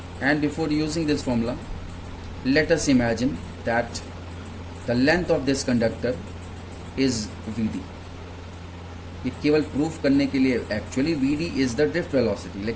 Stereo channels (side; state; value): both; identical; correlation 1.00